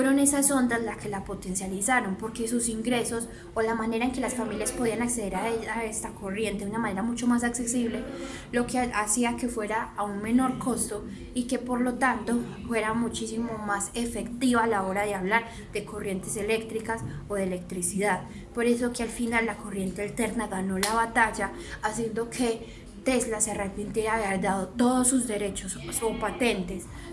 esas ondas las que la potencializaron, porque sus ingresos o la manera en que las familias podían acceder a esta corriente de una manera mucho más accesible, lo que hacía que fuera a un menor costo y que por lo tanto fuera muchísimo más efectiva a la hora de hablar de corrientes eléctricas o de electricidad. Por eso que al final la corriente alterna ganó la batalla, haciendo que Tesla se arrepintiera de haber dado todos sus derechos o patentes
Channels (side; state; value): both; identical; correlation 1.00